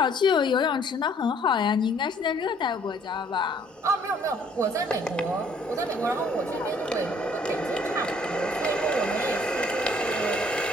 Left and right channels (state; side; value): normal; both; correlation 0.60